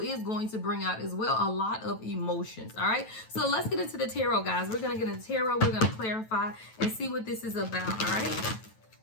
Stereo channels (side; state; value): right; late; 9.1 ms